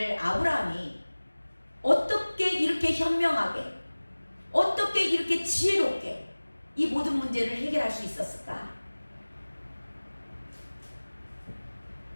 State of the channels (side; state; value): both; inverted; correlation -1.00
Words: 아브라함이 어떻게 이렇게 현명하게, 어떻게 이렇게 지혜롭게 이 모든 문제를 해결할 수 있었을까?